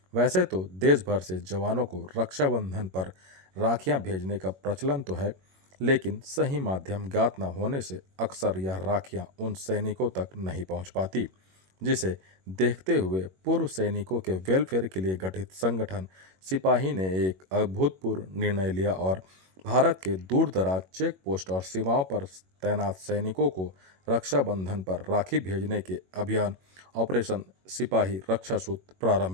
वैसे तो देश भर से जवानों को रक्षाबंधन पर राखियां भेजने का प्रचलन तो है, लेकिन सही माध्यम ज्ञात न होने से अक्सर यह राखियां उन सैनिकों तक नहीं पहुंच पाती, जिसे देखते हुए पूर्व सैनिकों के वेलफेयर के लिए गठित संगठन सिपाही ने एक अभूतपूर्व निर्णय लिया और भारत के दूर दराज चेक पोस्ट और सीमाओं पर तैनात सैनिकों को रक्षाबंधन पर राखी भेजने के अभियान ऑपरेशन सिपाही रक्षा सूत्र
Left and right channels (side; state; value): left; late; 21 ms